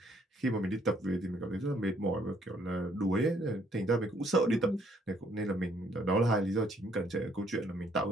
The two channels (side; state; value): both; normal; correlation 0.67